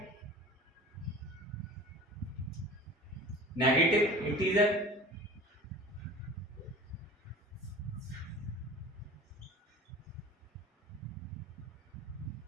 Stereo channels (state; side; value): normal; both; correlation 0.40